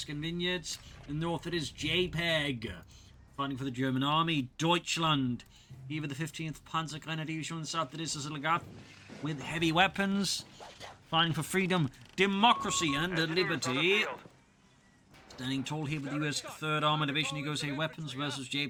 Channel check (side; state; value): both; identical; correlation 1.00